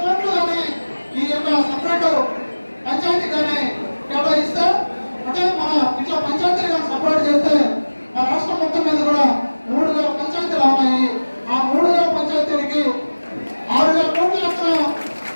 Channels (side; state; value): both; inverted; correlation -1.00